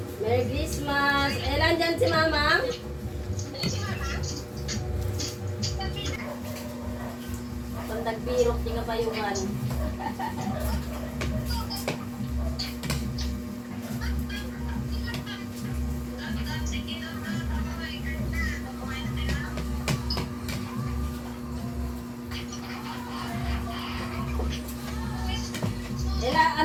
Merry Christmas. Elan dyan si Mama? Pandagpirok, tinga bayuhan.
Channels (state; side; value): identical; both; correlation 1.00